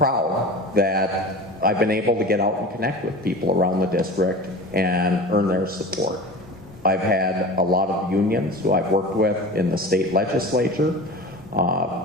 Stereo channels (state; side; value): normal; both; correlation 0.35